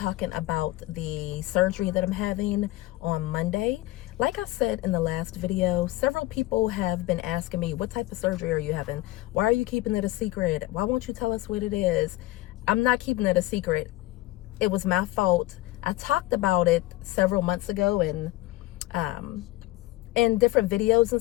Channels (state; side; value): quieter; right; 17.8 dB